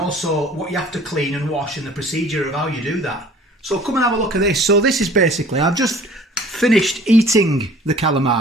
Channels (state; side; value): normal; both; correlation 0.50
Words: what you have to clean and wash and the procedure of how you do that. So come and have a look at this. So this is basically, I've just finished eating the